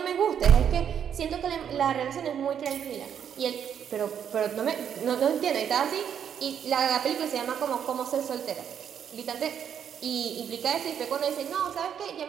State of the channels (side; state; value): left; quieter; 8.5 dB